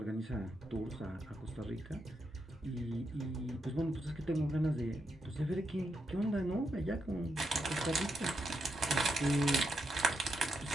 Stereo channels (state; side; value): normal; both; correlation 0.83